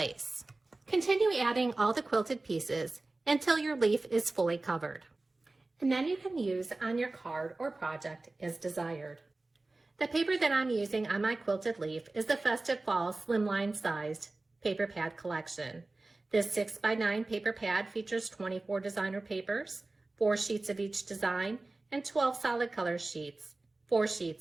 Continue adding all the quilted pieces until your leaf is fully covered. And then you can use on your card or project as desired. The paper that I'm using on my quilted leaf is the Festive Fall Slimline sized paper pad collection. This 6x9 paper pad features 24 designer papers, 4 sheets of each design, and 12 solid color sheets, 4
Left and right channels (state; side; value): quieter; left; 3.2 dB